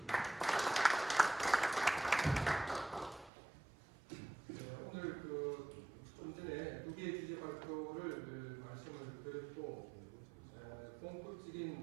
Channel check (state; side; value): drops out; left; at 3.3 s